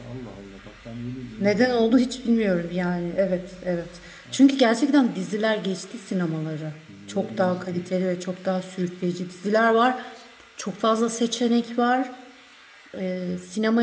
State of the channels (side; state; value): both; identical; correlation 1.00